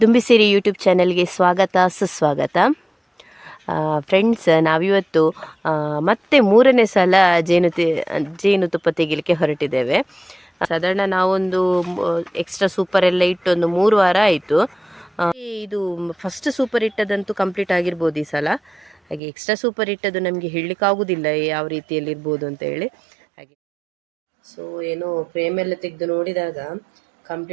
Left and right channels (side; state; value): left; drops out; at 19.2 s